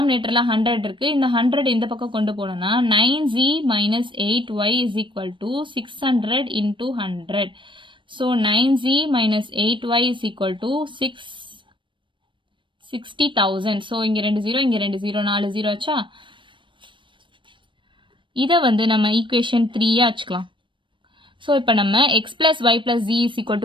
100 இருக்கு, இந்த 100 இந்த பக்கம் கொண்டு போனோம்னா 9z minus 8y is equal to 600 into 100. So 9z minus 8y is equal to 60,000. So இங்கே 2 0, இங்கே 2 0, 4 0 ஆச்சா. இதை வந்து நம்ம ஈக்குவேஷன் 3 வச்சுக்கலாம். ஸோ இப்போ நம்ம x plus y plus z is equal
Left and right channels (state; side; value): late; left; 0.24 ms